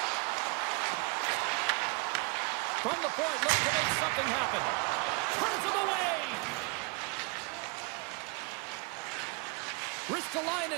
From the point, looks to make something happen. Turns him away.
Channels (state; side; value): quieter; left; 30.5 dB